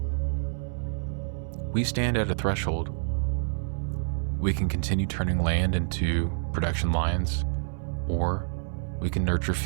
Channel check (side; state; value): left; silent; 59 dB below the other